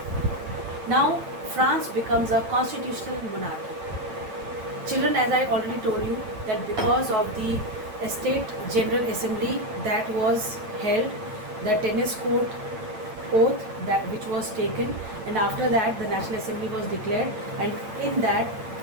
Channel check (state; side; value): late; left; 9.3 ms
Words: Now, France becomes a constitutional monarchy. Children, as I already told you, that because of the State General Assembly that was held, the tennis court oath that which was taken, and after that the National Assembly was declared, and in that